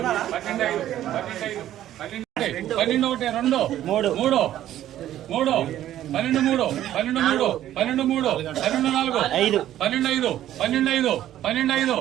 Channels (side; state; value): left; quieter; 12.5 dB